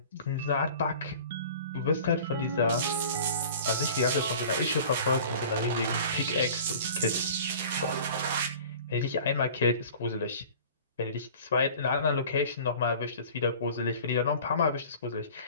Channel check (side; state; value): both; inverted; correlation -0.43